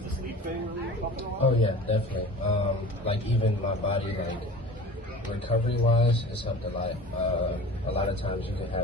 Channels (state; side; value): normal; both; correlation 0.38